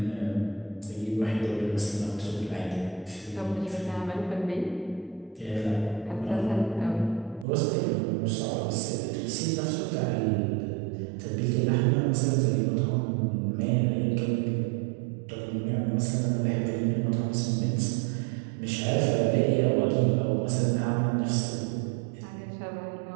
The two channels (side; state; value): left; drops out; at 7.5 s